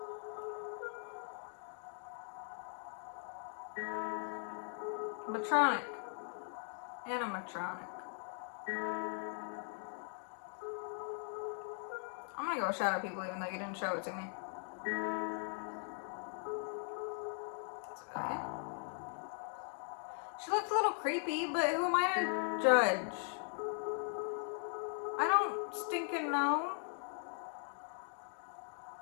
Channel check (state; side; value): silent; right; 51 dB below the other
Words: Matronic. Animatronic. I'm gonna go with Shadow People even though you didn't show it to me. It's okay. She looked a little creepy, but who am I to judge? I don't stinking know.